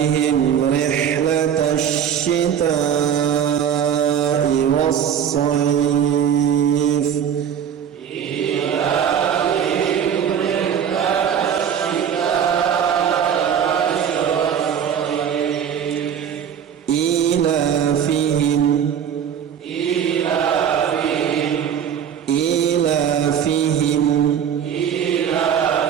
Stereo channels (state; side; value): quieter; left; 8.5 dB